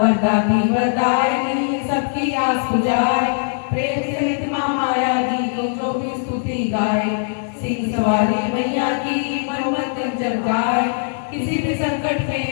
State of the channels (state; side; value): silent; right; digital silence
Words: वरदायिनी सबकी आस बुझाए, प्रेम सहित माँ माया दी को जो भी स्तुति गाए। सिंह सवारी मैया की मन मंदिर जब गाए, किसी भी संकट